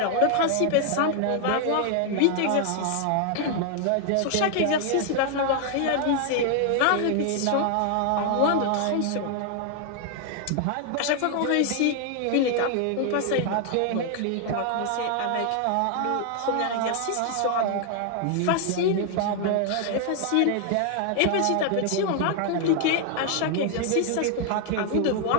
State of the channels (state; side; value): different; both; correlation 0.00